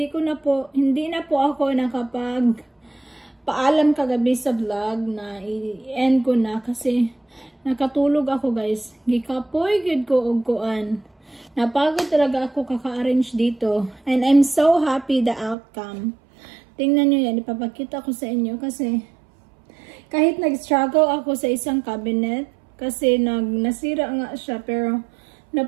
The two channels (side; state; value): left; drops out; at 15.6 s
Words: na po ako nakapag paalam kagabi sa vlog na i-end ko na kasi nakatulog ako guys. Gikapoy gid ko og kuan. Napagod talaga ako kaka-arrange dito. And I'm so happy the outcome. Tingnan nyo yan, ipapakita ko sa inyo kasi kahit nag-struggle ako sa isang cabinet kasi nasira nga siya pero